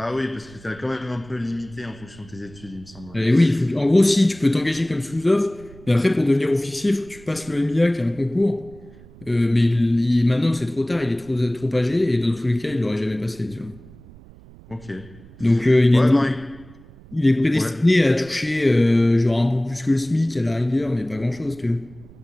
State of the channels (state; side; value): noise; right; rumble, 22 dB below the sound